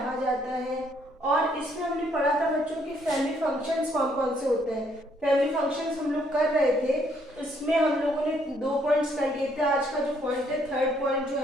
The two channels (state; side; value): normal; both; correlation 0.69